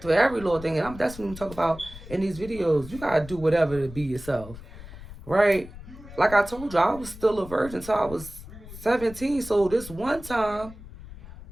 to every little thing, and that's what we talk about in these videos. You got to do whatever to be yourself. Right? Like I told you, I was still a virgin until I was 17. So this one time,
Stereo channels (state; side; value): noise; left; rumble, 15 dB below the sound